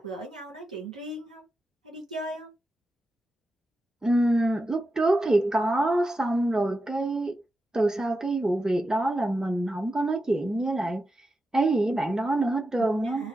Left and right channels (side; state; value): both; normal; correlation 0.89